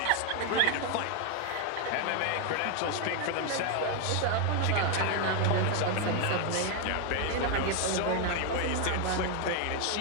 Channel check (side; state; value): both; different; correlation 0.01